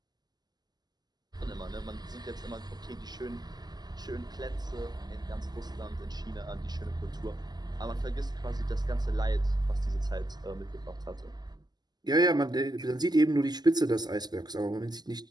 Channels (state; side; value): late; left; 0.20 ms